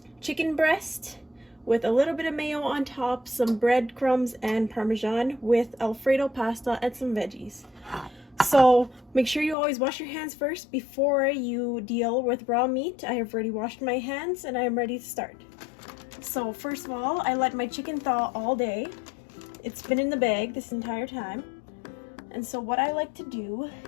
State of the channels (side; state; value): right; drops out; at 9.6 s